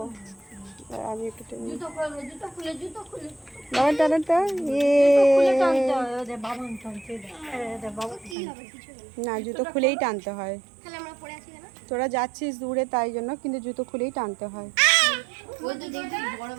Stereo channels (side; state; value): left; drops out; at 8.3 s